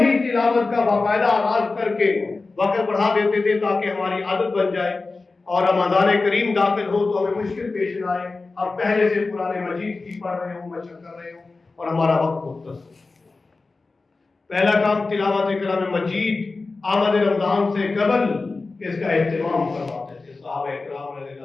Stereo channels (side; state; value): right; quieter; 3.7 dB